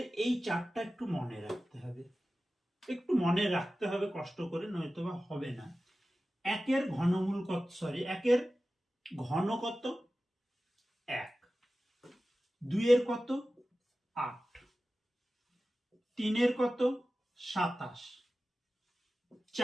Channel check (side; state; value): both; normal; correlation 0.95